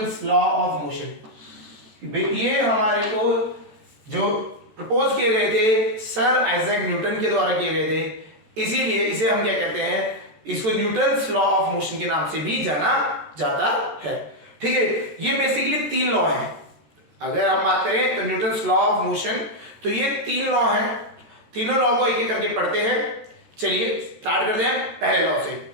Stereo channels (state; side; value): late; left; 13 ms